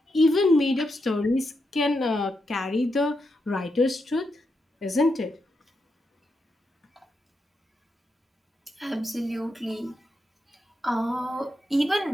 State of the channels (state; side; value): normal; both; correlation 0.84